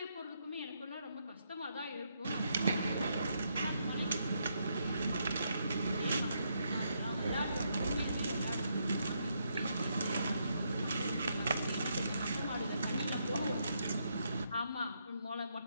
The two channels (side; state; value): both; inverted; correlation -0.78